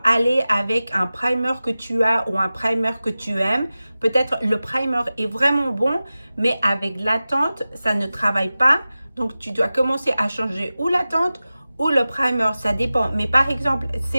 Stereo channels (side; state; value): both; inverted; correlation -0.95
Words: aller avec un primer que tu as ou un primer que tu aimes. Peut-être le primer est vraiment bon, mais avec la teinte, ça ne travaille pas. Donc, tu dois commencer à changer ou la teinte ou le primer, ça dépend. Mais par exemple,